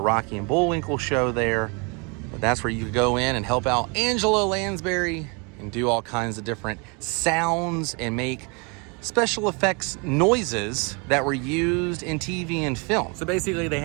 and Bullwinkle show there. But that's where you could go in and help out Angela Lansbury and do all kinds of different sounds and make special effects noises that were used in TV and film. So basically they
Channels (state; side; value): quieter; left; 32.1 dB